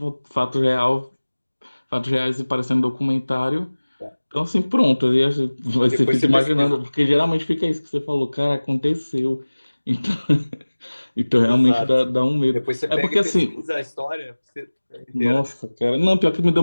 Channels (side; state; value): both; inverted; correlation -1.00